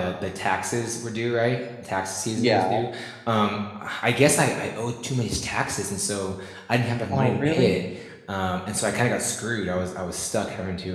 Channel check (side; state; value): both; identical; correlation 1.00